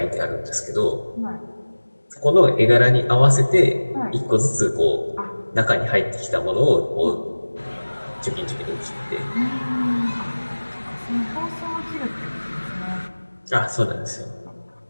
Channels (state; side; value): inverted; both; correlation -1.00